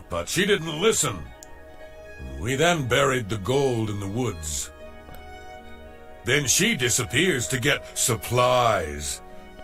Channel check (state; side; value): identical; both; correlation 1.00